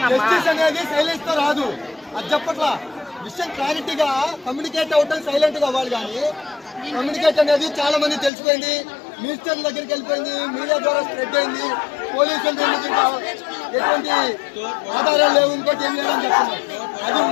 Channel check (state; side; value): drops out; right; at 8.3 s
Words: జస్టిస్ అనేది సైలెన్స్ తో రాదు. అది చెప్పట్లా విషయం క్లారిటీగా కమ్యూనికేట్ అవటం సైలెంట్ గా అవ్వాలి. కానీ కమ్యూనికేట్ అనేది చాలా మంది తెలిసిపోయింది, మినిస్టర్ దగ్గరికి వెళ్ళిపోయింది, మీడియా ద్వారా స్ప్రెడ్ అయింది. పోలీసులు ఎటువంటి ఆధారాలు లేవు, ఇంకోటి ఏం లేదని చెప్తున్నారు. అది